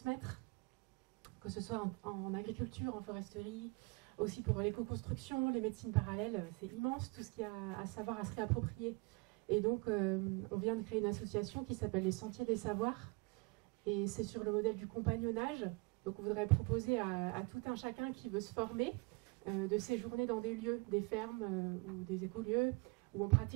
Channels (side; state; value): left; quieter; 28.4 dB